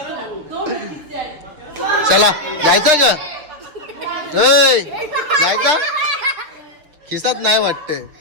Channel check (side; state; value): left; late; 6.6 ms